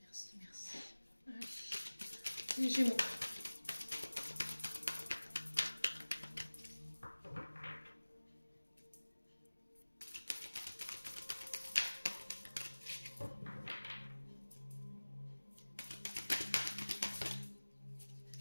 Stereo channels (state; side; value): inverted; both; correlation -1.00